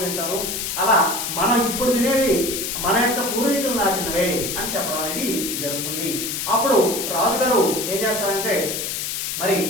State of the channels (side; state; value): left; noise; hiss, 3 dB below the sound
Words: తింటారు, అలా మనం ఇప్పుడు తినేవి మన యొక్క పూర్వీకులు నాటినవే అని చెప్పడం అనేది జరుగుతుంది. అప్పుడు రాజుగారు ఏం చేస్తారంటే, మరి